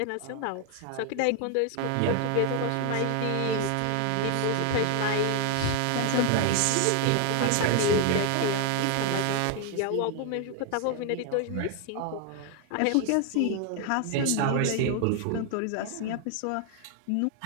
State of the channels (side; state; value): both; different; correlation 0.01